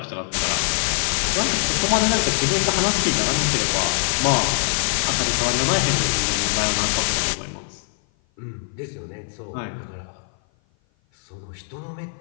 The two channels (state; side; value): silent; right; 56 dB below the other